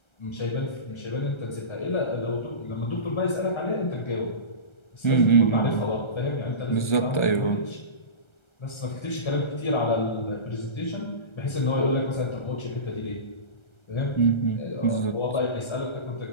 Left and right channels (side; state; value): right; late; 1.3 ms